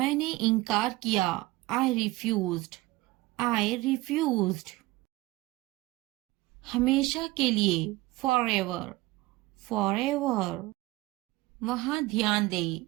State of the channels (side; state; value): left; quieter; 19.8 dB